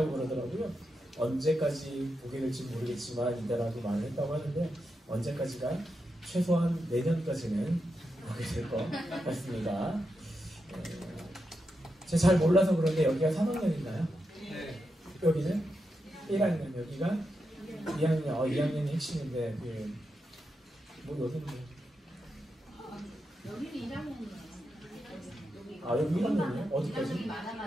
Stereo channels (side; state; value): both; normal; correlation 0.86